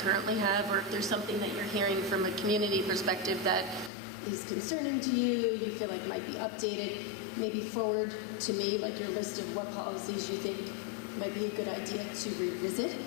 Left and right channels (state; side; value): drops out; right; at 3.9 s